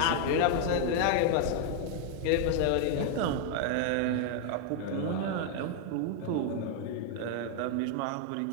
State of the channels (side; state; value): both; different; correlation 0.00